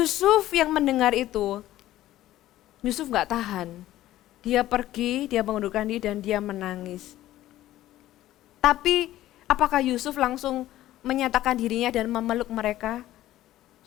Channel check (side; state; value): right; quieter; 14.5 dB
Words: yang mendengar itu, Yusuf gak tahan. Dia pergi, dia mengundurkan diri dan dia menangis. Tapi apakah Yusuf langsung menyatakan dirinya dan memeluk mereka?